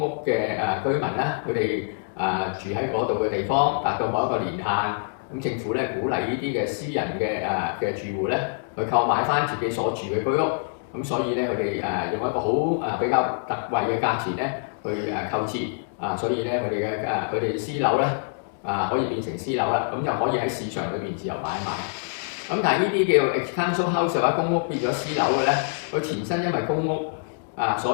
屋嘅居民啦，佢哋住喺嗰度嘅地方達到某一個年限，咁政府咧鼓勵呢啲嘅私人嘅住戶咧去購買翻自己所住嘅居屋，咁所以咧佢哋用一個好比較特惠嘅價錢咧去購置，所以咧佢哋私樓咧可以變成私樓啦，咁就可以喺市場裏邊自由買賣。咁但係呢啲叫 ex-council house 或者公屋變咗私樓嘅咧，佢前身因為公屋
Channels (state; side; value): silent; right; digital silence